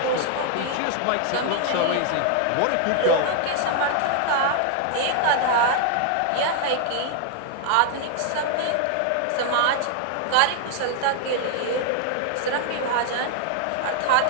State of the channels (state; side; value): different; both; correlation 0.00